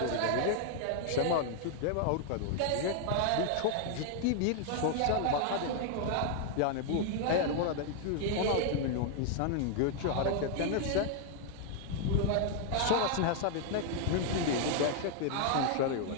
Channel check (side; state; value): both; different; correlation 0.00